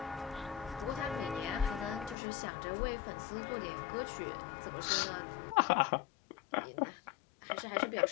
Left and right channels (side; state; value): right; drops out; at 2.1 s